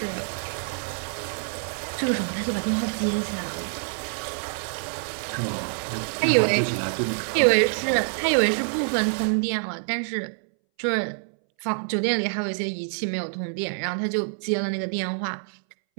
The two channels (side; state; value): left; silent; 61 dB below the other